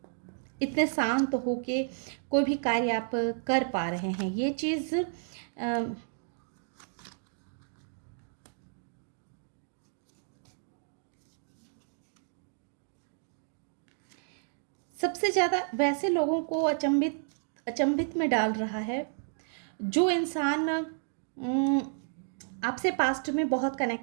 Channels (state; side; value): silent; left; digital silence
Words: इतने शांत होके कोई भी कार्य आप कर पा रहे हैं। ये चीज़ सबसे ज़्यादा वैसे लोगों को अचंभित में डाल रहा है जो इंसान आपसे पास्ट में बहुत